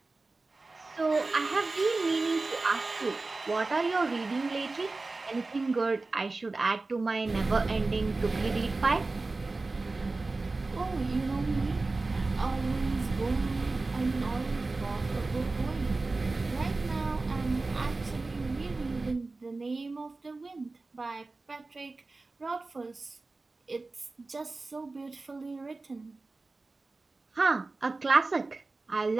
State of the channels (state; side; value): quieter; left; 3.5 dB